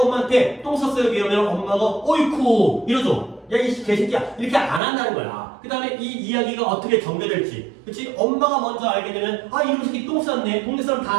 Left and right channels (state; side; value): drops out; left; at 4.8 s